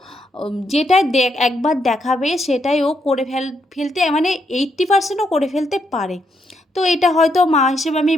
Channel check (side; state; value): both; normal; correlation 0.78